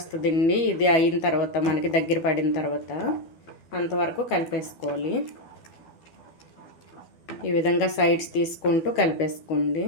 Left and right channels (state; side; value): late; right; 12 ms